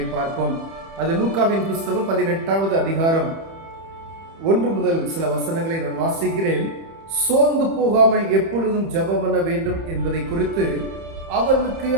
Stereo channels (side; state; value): left; late; 30 ms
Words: பார்ப்போம். அது லூக்காவின் புஸ்தகம் 18வது அதிகாரம் 1 முதல் சில வசனங்களை நான் வாசிக்கிறேன். சோர்ந்து போகாமல் எப்பொழுதும் ஜெபம் பண்ண வேண்டும் என்பதை குறித்து அவர்களுக்கு